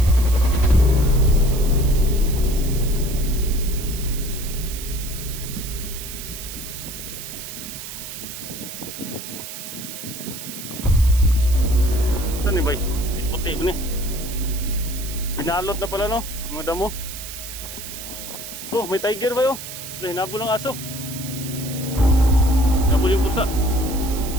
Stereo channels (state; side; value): noise; right; hiss, 10 dB below the sound